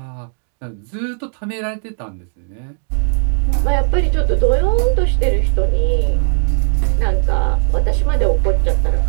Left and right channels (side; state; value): left; silent; 68 dB below the other